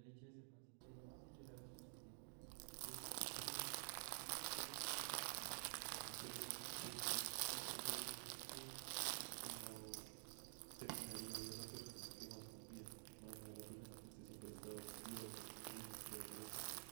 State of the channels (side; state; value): left; silent; digital silence